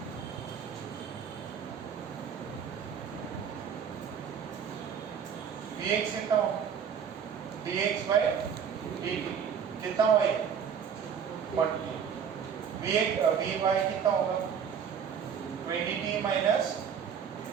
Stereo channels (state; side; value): quieter; left; 7.5 dB